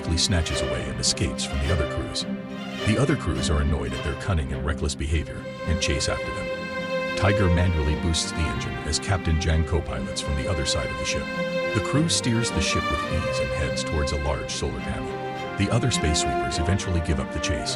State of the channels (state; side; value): identical; both; correlation 1.00